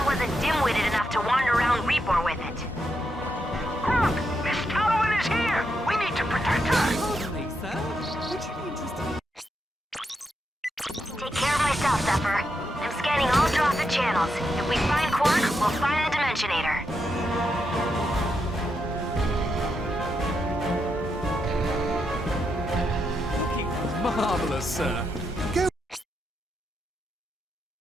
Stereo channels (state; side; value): normal; both; correlation 0.83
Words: wasn't dim-witted enough to wander around Repor with it. Kronk, Miss Tallowan is here! We need to protect her! Take care of myself, Zephyr. I'm scanning all Drophet channels. If we find Quark, we'll find the Dimensionator. Marvelous, sir. Go